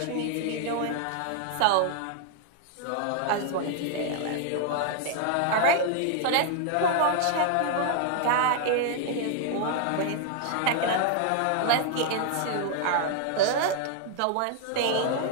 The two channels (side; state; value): both; different; correlation -0.01